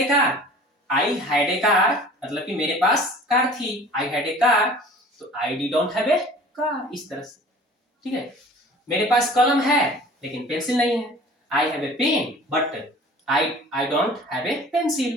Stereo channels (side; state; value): both; normal; correlation 0.45